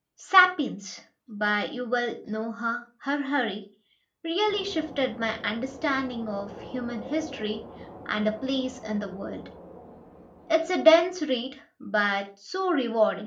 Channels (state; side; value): identical; both; correlation 1.00